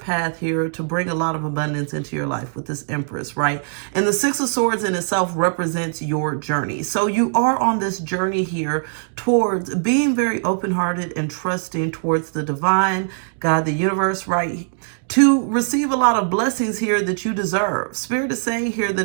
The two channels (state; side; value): silent; left; digital silence